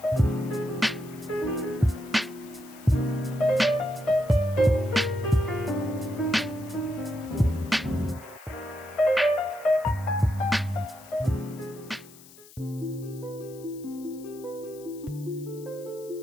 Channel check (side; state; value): left; noise; hiss, 22 dB below the sound